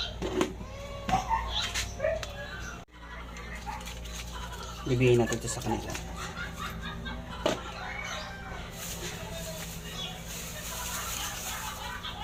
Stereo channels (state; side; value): identical; both; correlation 1.00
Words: Bibigyan natin ito sa kanila.